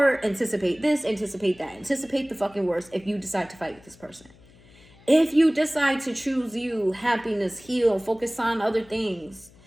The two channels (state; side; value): noise; left; hum, 26 dB below the sound